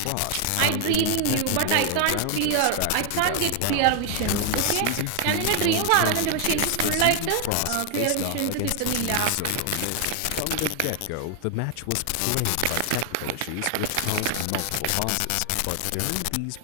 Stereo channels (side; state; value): both; different; correlation 0.00